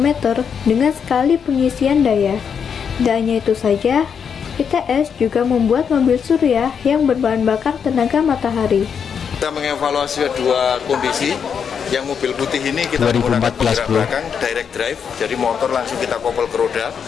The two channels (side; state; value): right; quieter; 7.0 dB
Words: dengan sekali pengisian daya. Tidak hanya itu saja, ITS juga membuat mobil surya yang berbahan bakar tenaga matahari. Kita mengevaluasi dua kondisi. Yang mobil putih ini kita menggunakan penggerak belakang direct drive, jadi motor langsung kita kopel ke roda.